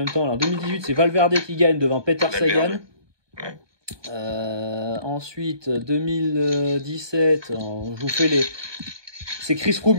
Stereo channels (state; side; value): late; left; 1.2 ms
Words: temps. En 2018, c'est Valverde qui gagne devant Peter Sagan. Ouais. Ensuite, 2017, je vous fais c'est Chris